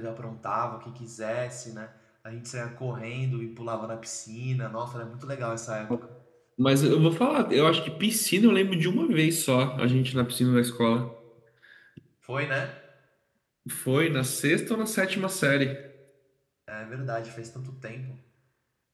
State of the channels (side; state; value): both; identical; correlation 1.00